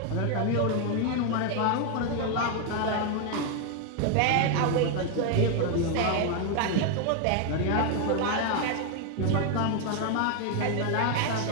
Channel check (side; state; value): both; different; correlation 0.01